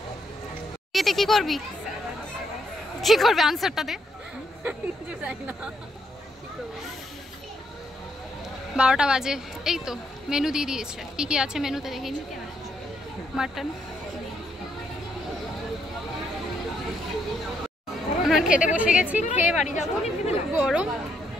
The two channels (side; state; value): both; normal; correlation 0.75